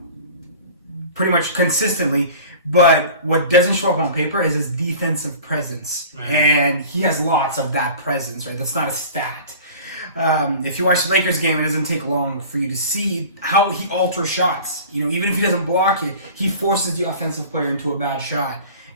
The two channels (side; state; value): both; inverted; correlation -0.41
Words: consistently. But what doesn't show up on paper is his defensive presence. Right. And he has lots of that presence, right? That's not a stat. If you watch the Lakers game, it doesn't take long for you to see how he alters shots. Even if he doesn't block it, he forces the offensive player into a bad shot.